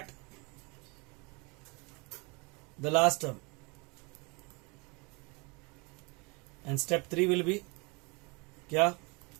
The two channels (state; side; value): quieter; left; 28.9 dB